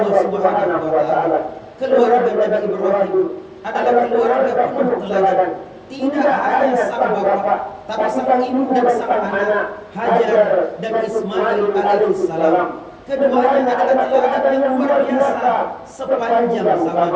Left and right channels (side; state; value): both; identical; correlation 1.00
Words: Subhanahu wa taala, keluarga Nabi Ibrahim adalah keluarga penuh teladan. Tidak hanya sang bapak, tapi sang ibu dan sang anak, Hajar dan Ismail alaihissalam. Keduanya adalah teladan yang luar biasa sepanjang